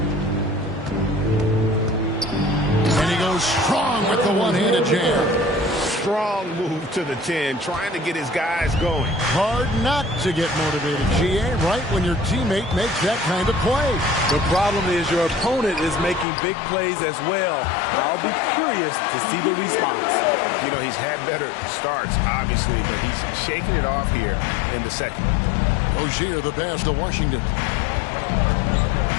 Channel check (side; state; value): right; drops out; at 16.2 s